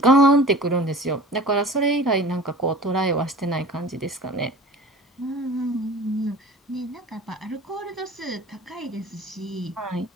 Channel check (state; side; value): normal; both; correlation 0.41